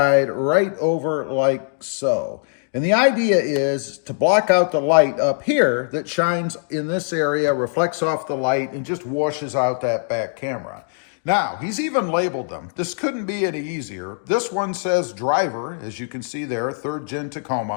right over like so. And the idea is to block out the light up here that shines in this area, reflects off the light, and just washes out that back camera. Now, he's even labeled them. This couldn't be any easier. This one says driver, as you can see there, 3rd Gen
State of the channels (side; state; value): right; silent; digital silence